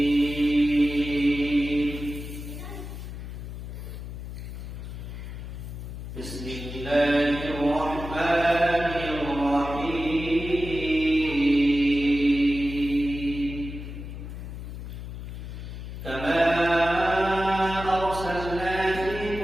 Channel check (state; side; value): noise; left; hum, 9 dB below the sound